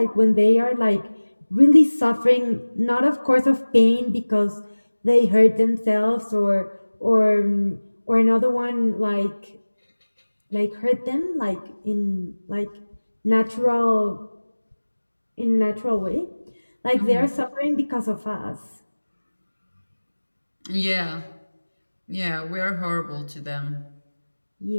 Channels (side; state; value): both; inverted; correlation -1.00